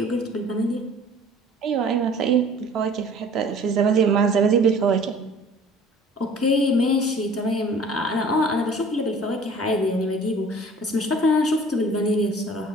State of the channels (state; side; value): normal; both; correlation 0.48